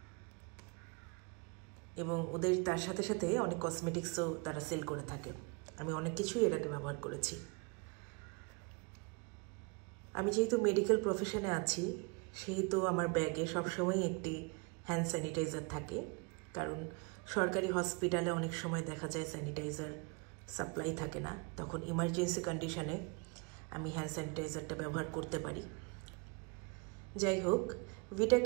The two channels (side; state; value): left; quieter; 31.4 dB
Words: এবং ওদের তার সাথে সাথে অনেক কসমেটিক্সও তারা সেল করে থাকে। আমি অনেক কিছুই এর আগে ব্যবহার করেছি। আমি যেহেতু মেডিকেল প্রফেশনে আছি সেহেতু আমার ব্যাগে সবসময় একটি হ্যান্ড স্যানিটাইজার থাকে, কারণ সরকারি হসপিটালে অনেক সময় দেখা যায় স্যানিটাইজার সাপ্লাই থাকে না, তখন ইমার্জেন্সি কন্ডিশনে আমি হ্যান্ড স্যানিটাইজারটা ব্যবহার করতে পারি। যাই হোক, ভিটা